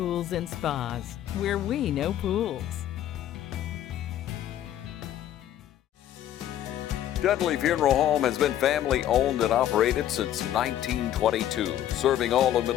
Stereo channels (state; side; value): quieter; right; 11.7 dB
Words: and Spas, where we know pools. Dudley Funeral Home has been family owned and operated since 1922, serving all of